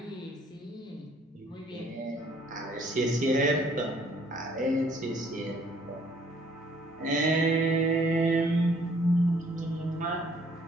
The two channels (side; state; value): both; normal; correlation 0.61